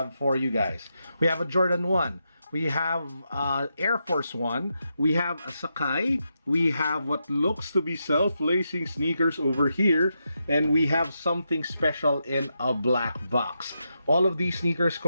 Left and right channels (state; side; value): inverted; both; correlation -0.85